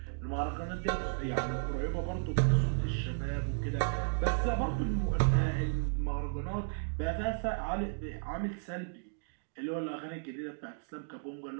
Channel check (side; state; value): left; silent; digital silence